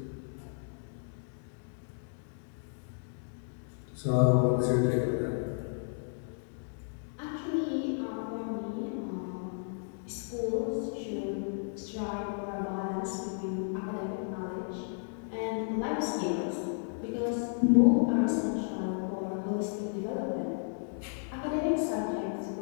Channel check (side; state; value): right; silent; digital silence